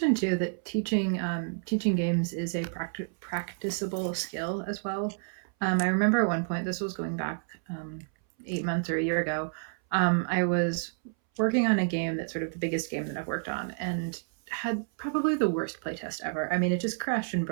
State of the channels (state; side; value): silent; left; 58 dB below the other